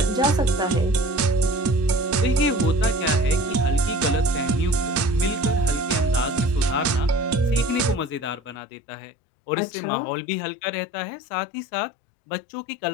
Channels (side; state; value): right; drops out; at 8.6 s